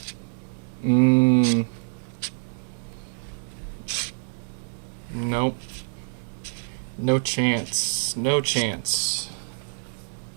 Nope. No chance. No chance.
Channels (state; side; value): silent; left; 61 dB below the other